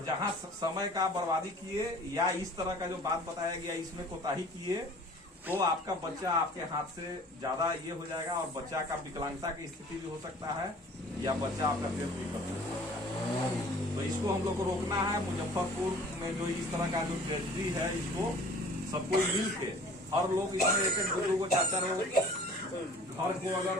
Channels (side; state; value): both; normal; correlation 0.48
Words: जहां समय का बर्बादी किए या इस तरह का जो बात बताया गया इसमें कोताही किए तो आपका बच्चा आपके हाथ से ज्यादा ये हो जाएगा, और बच्चा का विकलांगता की स्थिति भी हो सकता है, या बच्चा आपका डेथ भी कर सकता है। तो इसको हम लोग को रोकना है। मुजफ्फरपुर में जो इस तरह का जो ट्रेजेडी है, इसको सबको मिल के हर लोग इसमें एक दो को चार चार घर को अगर